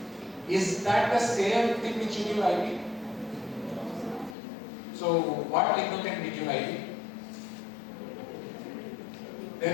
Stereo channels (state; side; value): drops out; right; at 4.4 s